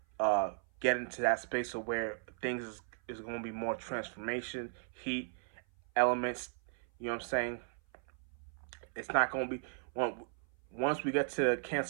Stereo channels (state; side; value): silent; left; 53 dB below the other